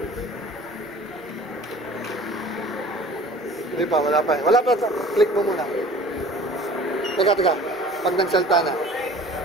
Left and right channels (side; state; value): both; normal; correlation 0.46